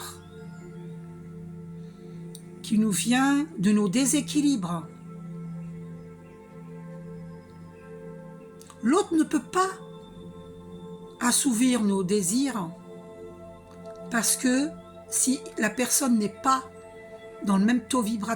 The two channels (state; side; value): identical; both; correlation 1.00